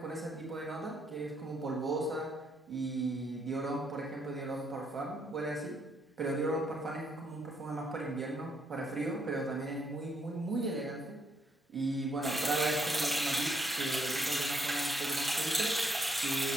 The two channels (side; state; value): both; normal; correlation 0.73